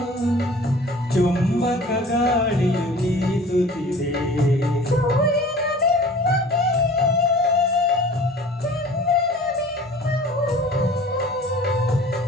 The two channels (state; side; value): normal; both; correlation 0.45